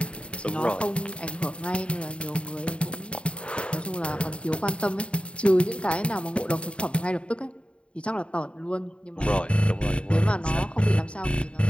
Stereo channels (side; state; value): right; late; 0.058 ms